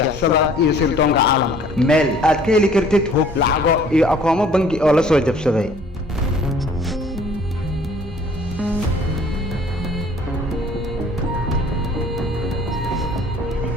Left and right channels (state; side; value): normal; both; correlation 0.54